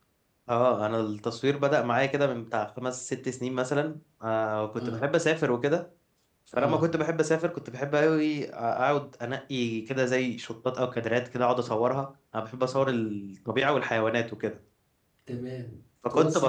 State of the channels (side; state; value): both; identical; correlation 1.00